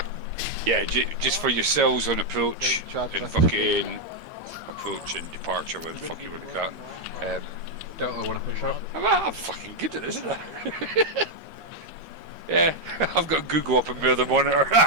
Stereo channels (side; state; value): left; late; 12 ms